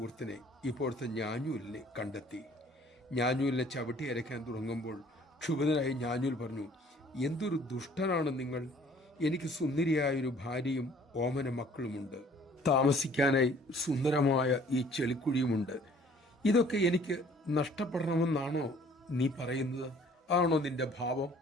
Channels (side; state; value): both; normal; correlation 0.55